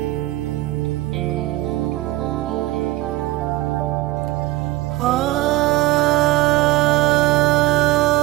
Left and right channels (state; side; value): quieter; left; 17.4 dB